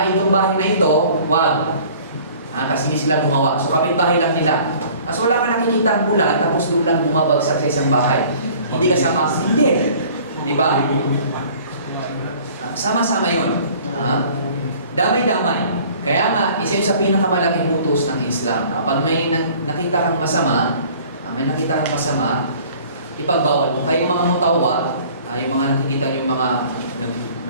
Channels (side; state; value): both; inverted; correlation -0.50